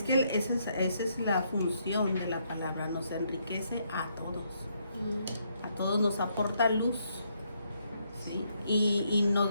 que esa es la función de la palabra, nos enriquece a todos. A todos nos aporta luz, ¿sí? Y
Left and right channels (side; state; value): both; inverted; correlation -0.74